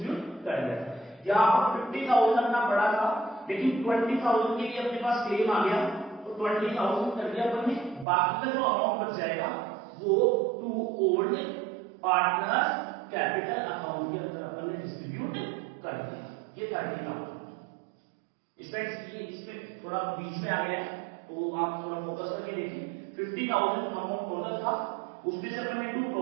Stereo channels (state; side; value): drops out; left; at 8.1 s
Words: कर दिया था। यहां पर 50,000 अपना पड़ा था, लेकिन 20,000 के लिए अपने पास क्लेम आ गया, तो 20,000 कर दिया अपन ने, बाकी का जो अमाउंट बच जाएगा वो to old partner capital account के अंदर अपन ने डिस्ट्रीब्यूट कर दिया। ये 30,000 इसमें थोड़ा बीच में आ गया है, तो आप थोड़ा फोकस करके देखिए। 50,000 अमाउंट टोटल था, उसमें से अपन ने टू